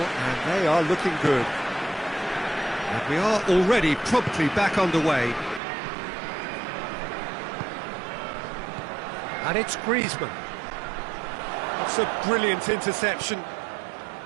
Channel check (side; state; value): left; drops out; at 5.6 s